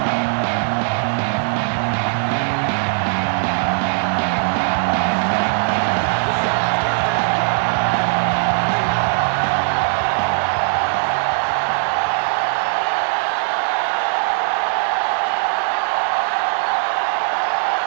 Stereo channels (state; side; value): silent; left; digital silence